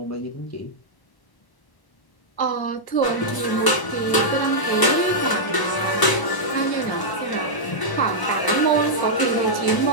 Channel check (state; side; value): late; right; 1.0 ms